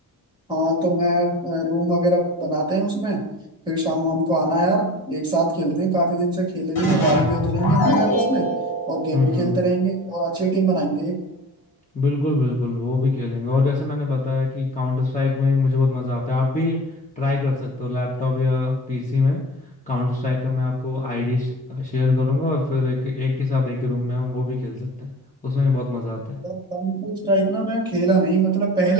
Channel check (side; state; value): both; normal; correlation 0.37